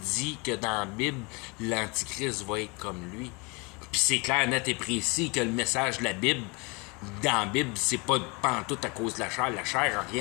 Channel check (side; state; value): right; quieter; 29.1 dB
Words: que dans la Bible, l'Antichrist va être comme lui. Puis c'est clair, net et précis que le message de la Bible, dans la Bible, c'est pas pantoute à cause de la chair. La chair n'a